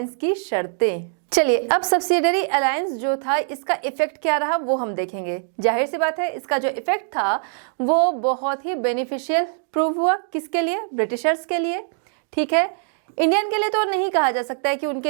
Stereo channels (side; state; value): left; silent; digital silence